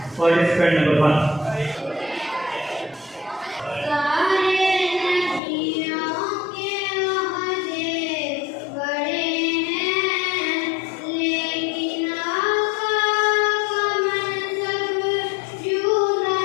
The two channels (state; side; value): drops out; right; at 5.4 s